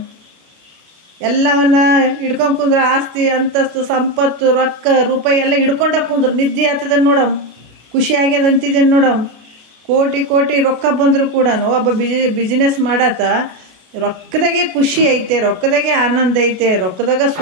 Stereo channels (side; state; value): left; late; 33 ms